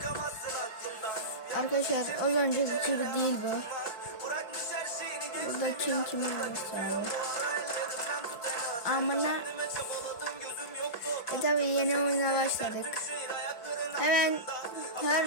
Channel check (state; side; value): late; right; 4.7 ms